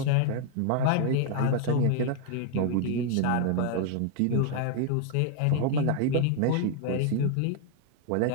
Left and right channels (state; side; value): different; both; correlation 0.00